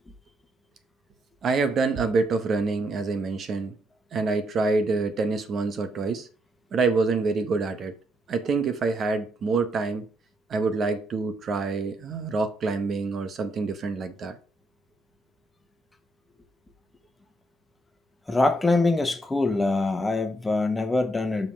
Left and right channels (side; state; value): both; normal; correlation 0.76